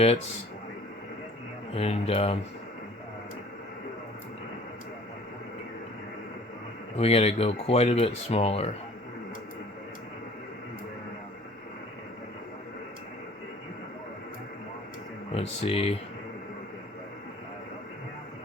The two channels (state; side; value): normal; both; correlation 0.50